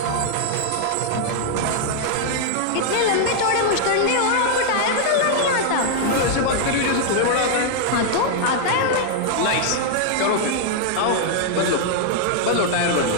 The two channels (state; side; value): different; both; correlation 0.00